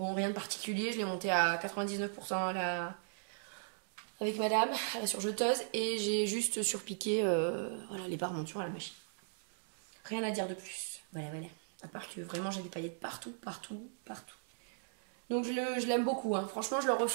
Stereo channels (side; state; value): left; silent; digital silence